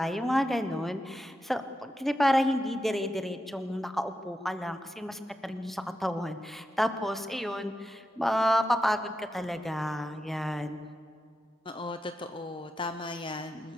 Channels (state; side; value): normal; both; correlation 0.88